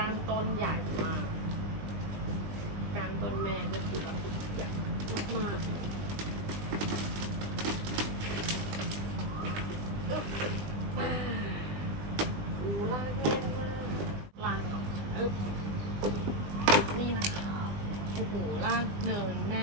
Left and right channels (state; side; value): late; left; 20 ms